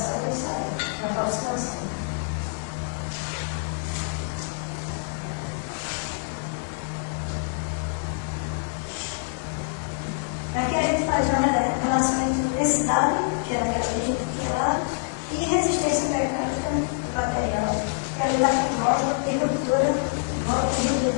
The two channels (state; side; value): silent; right; digital silence